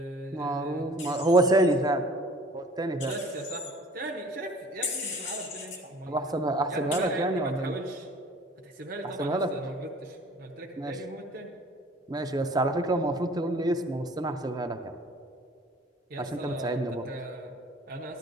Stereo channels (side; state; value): both; normal; correlation 0.49